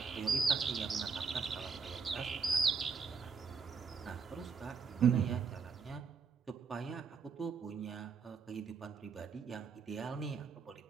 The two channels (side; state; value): left; quieter; 5.4 dB